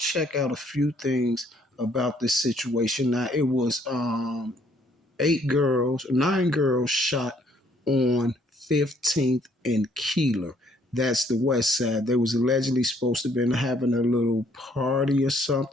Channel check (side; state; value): both; normal; correlation 0.65